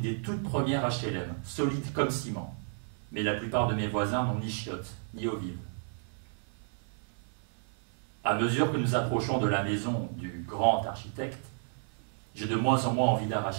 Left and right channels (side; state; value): left; silent; digital silence